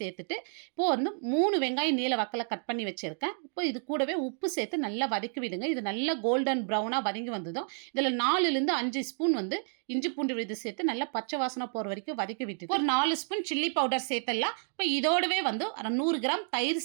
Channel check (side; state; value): left; silent; 57 dB below the other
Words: இப்போ வந்து 3 வெங்காயம் நீல வாக்கில் கட் பண்ணி வச்சுருக்கேன். இப்போ இது கூடவே உப்பு சேர்த்து நல்லா வதக்கி விடுங்க. இது நல்லா கோல்டன் ப்ரௌனாக வதங்கி வந்ததும் இதில் 4லேருந்து 5 ஸ்பூன் வந்து இஞ்சி பூண்டு விழுது சேர்த்து நல்லா பச்சை வாசனை போகிற வரைக்கும் வதக்கி விட்டு ஒரு 4 ஸ்பூன் சில்லி பவுடர் சேர்த்துடலாம். இப்போ இதோடவே வந்து 100 கிராம் தயிர்